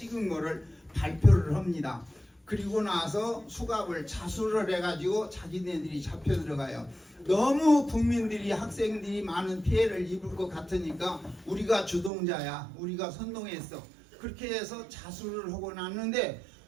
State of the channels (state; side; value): drops out; left; at 12.1 s